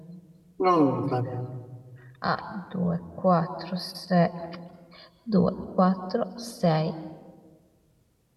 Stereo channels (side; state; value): both; identical; correlation 1.00